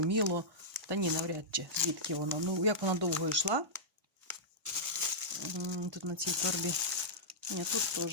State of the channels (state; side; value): normal; both; correlation -0.11